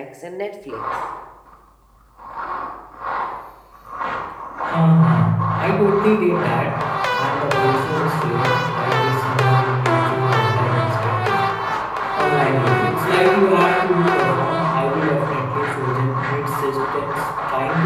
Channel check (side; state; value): both; identical; correlation 1.00